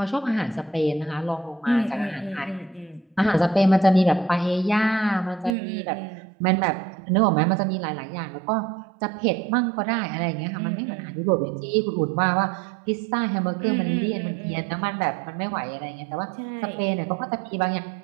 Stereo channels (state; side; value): drops out; left; at 5.6 s